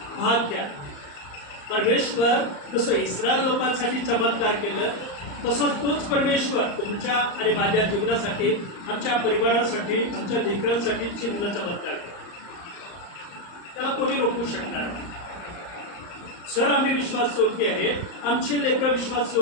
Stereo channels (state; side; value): late; right; 34 ms